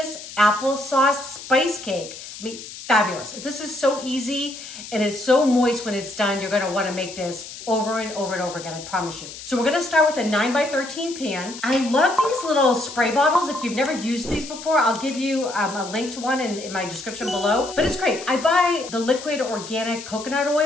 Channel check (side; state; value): left; noise; hiss, 13 dB below the sound